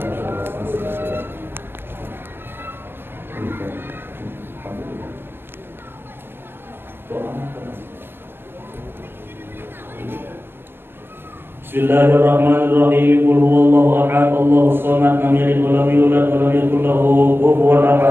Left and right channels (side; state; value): left; late; 0.10 ms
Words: Bismillahirrahmanirrahim. Qul huwallahu ahad, Allahus samad, lam yalid wa lam yulad wa lam yakul lahu kufuwan